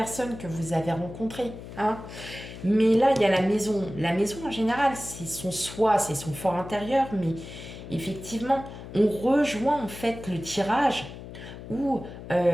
que vous avez rencontrée. Hein. Mais là, il y a la maison. La maison, en général, c'est son soi, c'est son fort intérieur. Mais effectivement, on rejoint en fait le tirage où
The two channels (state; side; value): noise; left; hum, 13 dB below the sound